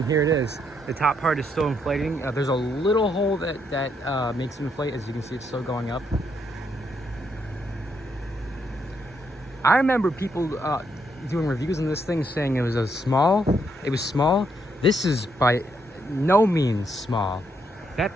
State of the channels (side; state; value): both; normal; correlation 0.76